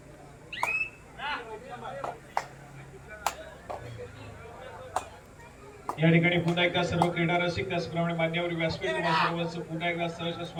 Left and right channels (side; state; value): both; identical; correlation 1.00